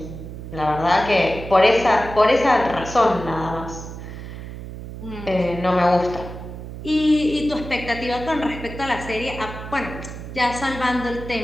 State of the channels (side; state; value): right; noise; hum, 10 dB below the sound